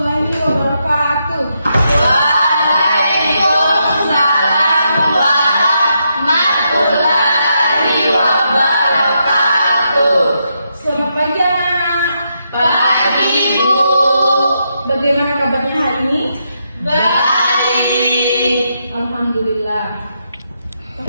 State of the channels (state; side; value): inverted; both; correlation -0.81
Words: wabarakatuh. Waalaikumsalam warahmatullahi wabarakatuh. Selamat pagi anak-anak. Pagi Bu. Bagaimana kabarnya hari ini? Baik. Alhamdulillah.